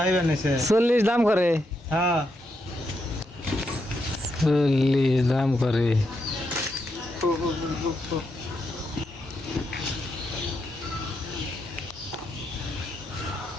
নেছে। 40 দাম করে। হ্যাঁ 40 দাম করে।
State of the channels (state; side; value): normal; both; correlation 0.81